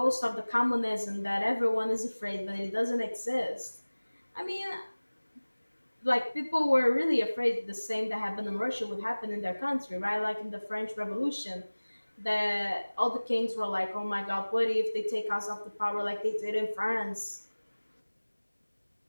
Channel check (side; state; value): both; inverted; correlation -1.00